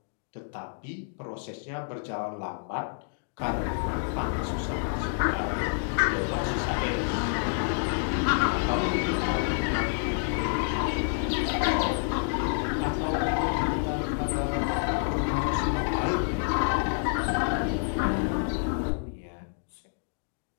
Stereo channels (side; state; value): right; silent; digital silence